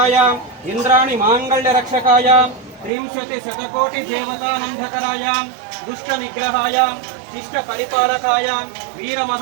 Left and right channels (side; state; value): left; drops out; at 2.9 s